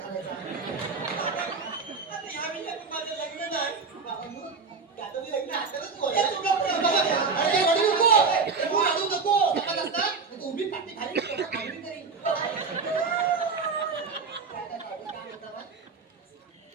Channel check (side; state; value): left; quieter; 4.8 dB